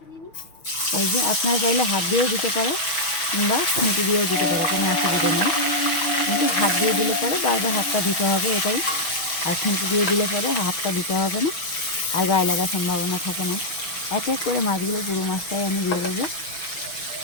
এই যে আপনারা চাইলে হাত দিয়েও দিতে পারো, কিংবা খুঁটি দিয়েও দিতে পারো, কোনো অসুবিধা নেই। কিন্তু হাত দিয়ে দিলে পরে বারবার হাতটা দিতে হবে, এটাই। আর খুঁটি দিয়ে দিলে পরে হাতটা দিতে হবে না, আর গায়ে লাগার সম্ভাবনা থাকে না। এক এক করে মাছগুলো, পুরো মাছটাই আমি দিয়ে দেবো।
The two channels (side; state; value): right; late; 6.0 ms